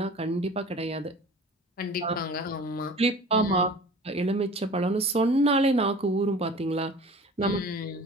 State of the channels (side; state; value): both; normal; correlation 0.42